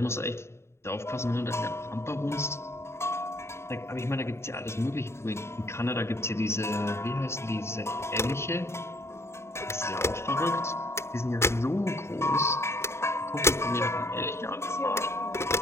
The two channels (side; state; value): right; late; 0.13 ms